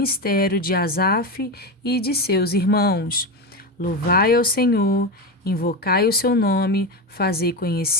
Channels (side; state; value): both; normal; correlation 0.17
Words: de Asaf e de seus irmãos. Louvai ao Senhor, invocai o seu nome, fazei